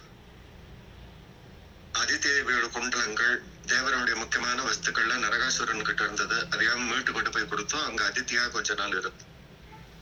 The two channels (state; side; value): identical; both; correlation 1.00